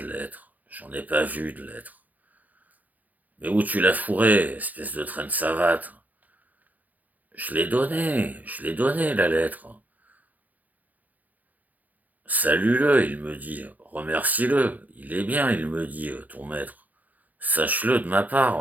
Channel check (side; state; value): left; late; 0.080 ms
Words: lettre. J'en ai pas vu de lettre. Mais où tu l'as fourré, espèce de traîne savate? Je l'ai donné, la lettre. Salue-le, il me dit. Remercie-le. Il est bien, il me dit, ton maître. Sache-le de ma